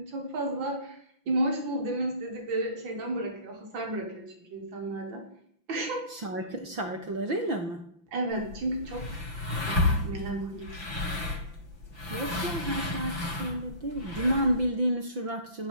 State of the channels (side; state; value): left; late; 5.9 ms